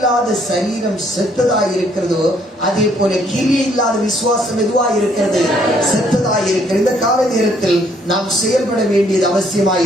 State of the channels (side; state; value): both; normal; correlation 0.66